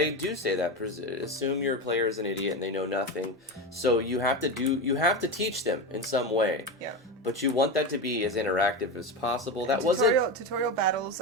do say that. Assume your player is an idiot and they know nothing. So you have to teach them in some way. Yeah. But you want that to be as interactive as possible. Tutorial battles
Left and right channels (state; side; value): normal; both; correlation 0.19